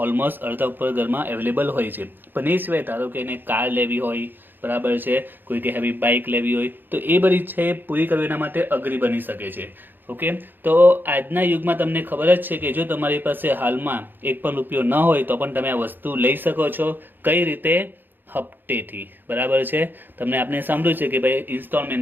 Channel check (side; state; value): left; late; 0.094 ms